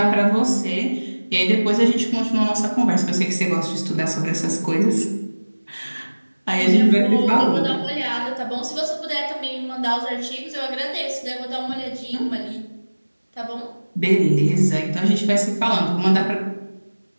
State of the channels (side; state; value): both; inverted; correlation -1.00